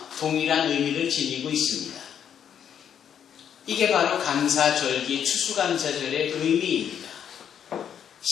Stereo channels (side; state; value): right; quieter; 8.7 dB